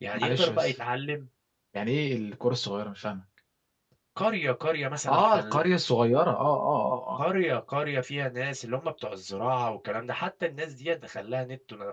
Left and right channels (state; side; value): identical; both; correlation 1.00